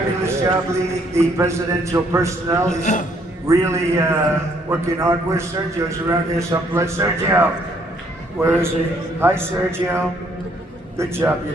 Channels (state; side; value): normal; both; correlation 0.67